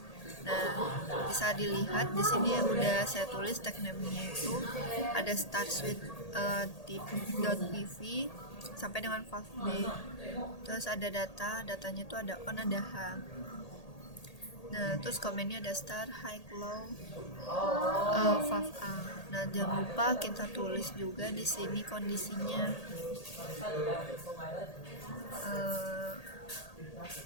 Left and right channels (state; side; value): late; right; 1.8 ms